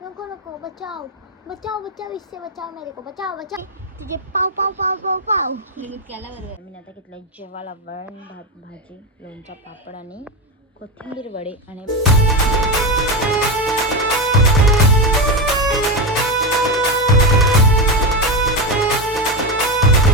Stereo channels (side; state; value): both; normal; correlation 0.14